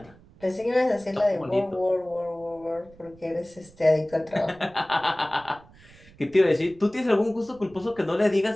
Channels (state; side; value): noise; right; rumble, 25 dB below the sound